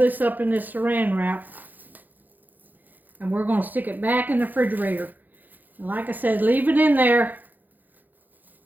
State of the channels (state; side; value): late; left; 0.085 ms